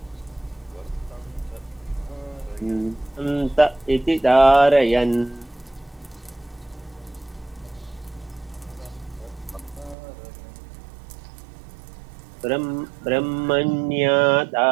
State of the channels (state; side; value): drops out; left; at 10.0 s